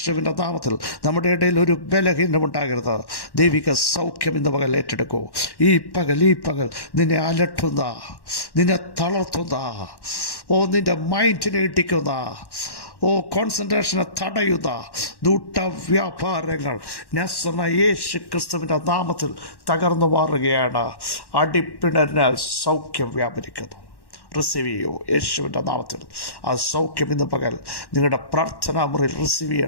നാമത്തിൽ നമ്മുടെ ഇടയിൽ ഒരു ബലഹീനമുണ്ടാകരുത്. ദൈവിക സൗഖ്യം ഇന്ന് പകൽ ഏറ്റെടുക്കൂ. ഈ പകൽ നിന്നെ അലട്ടുന്ന, നിന്നെ തളർത്തുന്ന, നിന്റെ മൈൻഡിനെ ഇടിക്കുന്ന, കോൺസെൻട്രേഷനെ തടയുന്ന ദൂട്ടവ്യാപാരങ്ങൾ നസറേനായ യേശു ക്രിസ്തുവിൻ്റെ നാമത്തിൽ തകർന്നു മാറുകയാണ്. അടിപ്പിണരിനാൽ സൗഖ്യം വ്യാപരിക്കുന്നു. റിസീവ് ചെയ്യൂ യേശുവിൻ്റെ നാമത്തിൽ. ആ സൗഖ്യം ഇന്ന് പകൽ നിങ്ങളുടെ പ്രാർത്ഥനാ മുറിയിൽ റിസീവ്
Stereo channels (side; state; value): right; late; 1.1 ms